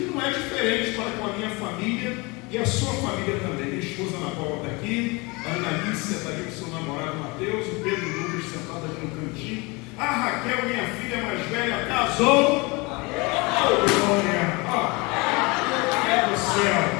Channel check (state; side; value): quieter; right; 26.4 dB